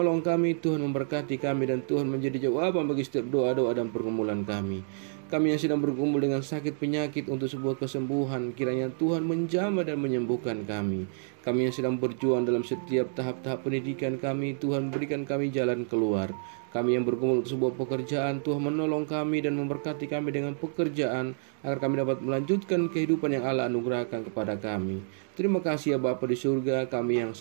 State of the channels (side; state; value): left; silent; digital silence